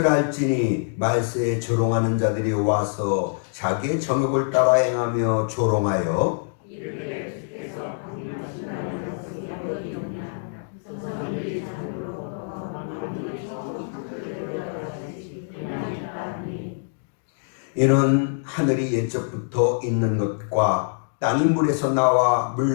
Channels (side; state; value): right; silent; digital silence